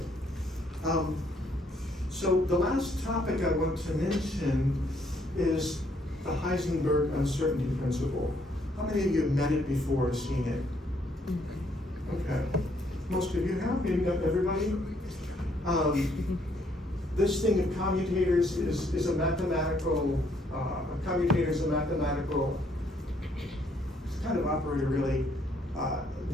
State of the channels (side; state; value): both; normal; correlation 0.69